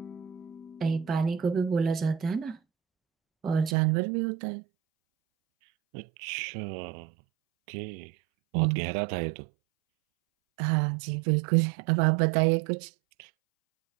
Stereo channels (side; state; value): left; drops out; at 3.8 s